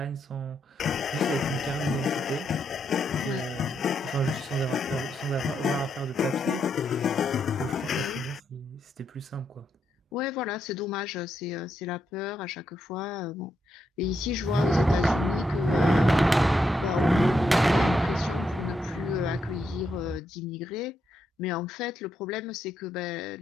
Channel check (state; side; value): normal; both; correlation 0.80